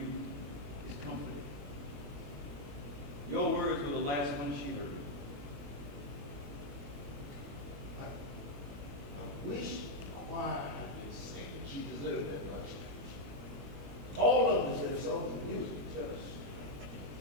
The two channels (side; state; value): left; late; 21 ms